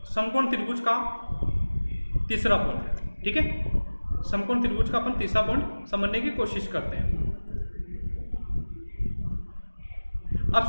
समकोण त्रिभुज का तीसरा पॉइंट। ठीक है, समकोण त्रिभुज का अपन तीसरा पॉइंट समझने की कोशिश करते हैं। अब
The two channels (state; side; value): inverted; both; correlation -1.00